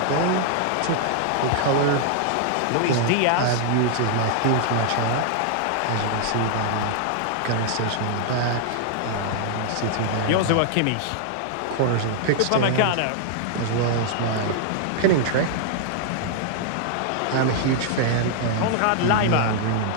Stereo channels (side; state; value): both; different; correlation 0.00